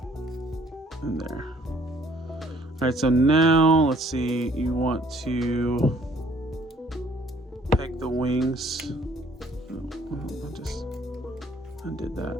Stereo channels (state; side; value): normal; both; correlation 0.60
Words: And there. All right, so now let's see, you want to peg the wings. Oh, I just undid that.